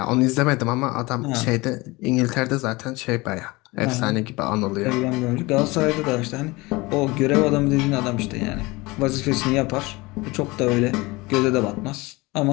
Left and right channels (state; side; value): quieter; right; 23.0 dB